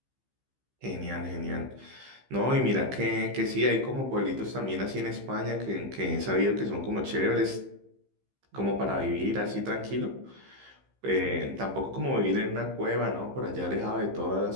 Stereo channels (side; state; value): left; late; 15 ms